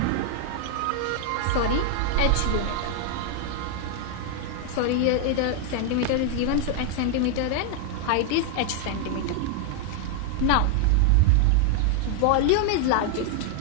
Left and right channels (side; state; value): both; different; correlation 0.00